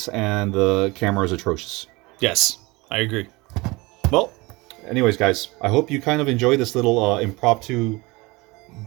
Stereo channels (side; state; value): left; quieter; 23.6 dB